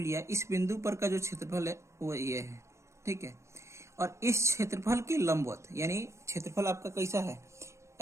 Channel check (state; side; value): late; left; 0.14 ms